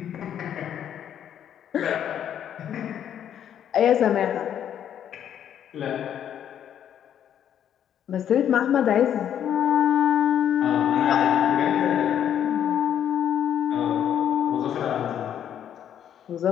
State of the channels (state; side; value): quieter; right; 9.7 dB